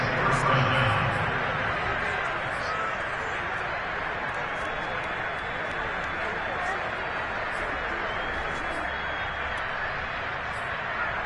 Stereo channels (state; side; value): identical; both; correlation 1.00